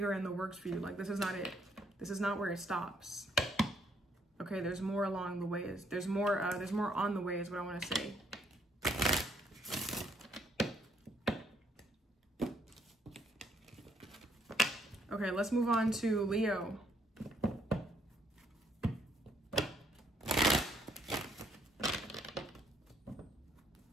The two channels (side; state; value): both; normal; correlation 0.69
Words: in the works for you. Like, this is not it. This is not where it stops. Okay, there's more along the way. There's more on the way is what I want to say. Okay, let's move on to Leo.